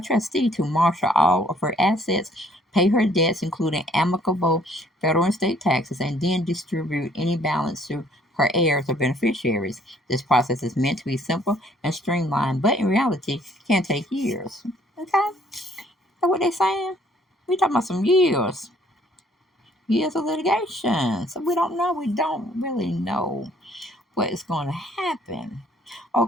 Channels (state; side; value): normal; both; correlation 0.61